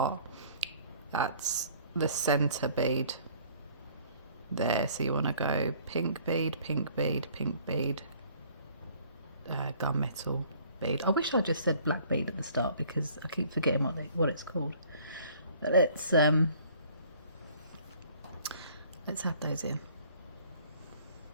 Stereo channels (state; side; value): inverted; both; correlation -0.55